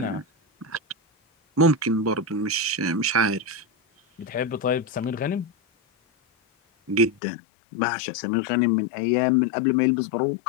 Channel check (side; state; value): right; drops out; at 7.2 s